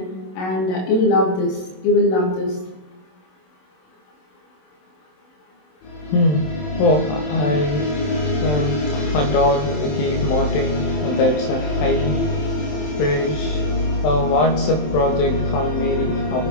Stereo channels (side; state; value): right; late; 27 ms